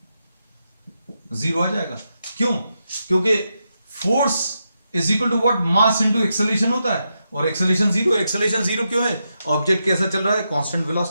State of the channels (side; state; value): both; inverted; correlation -0.85